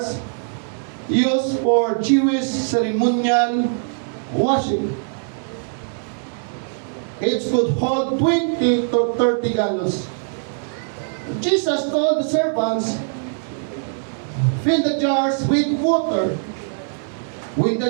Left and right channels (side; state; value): left; silent; digital silence